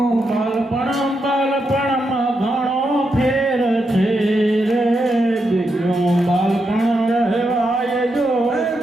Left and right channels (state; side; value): normal; both; correlation 0.83